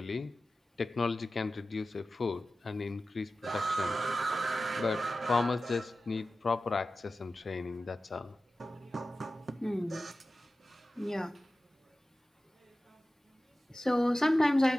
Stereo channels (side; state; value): both; normal; correlation 0.95